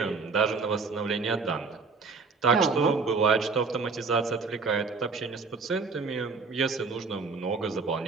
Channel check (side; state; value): left; quieter; 4.5 dB